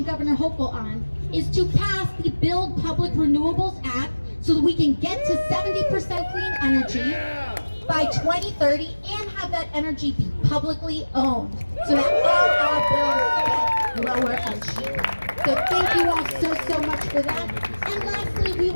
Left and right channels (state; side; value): inverted; both; correlation -1.00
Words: Governor Hochul on is to pass the Build Public Renewables Act so that we can get to 70% clean energy by 2030 and have that energy be publicly owned so that all our bills So thank you all so much for that. And lastly, we